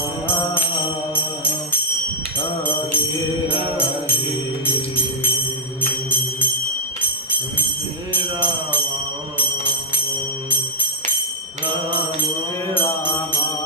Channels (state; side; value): normal; both; correlation -0.04